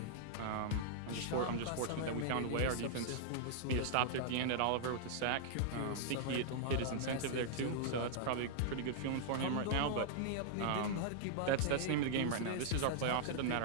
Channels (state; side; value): different; both; correlation -0.02